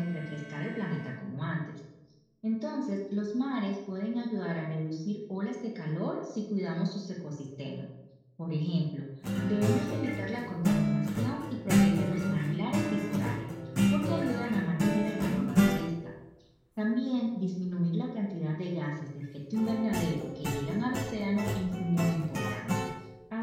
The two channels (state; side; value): identical; both; correlation 1.00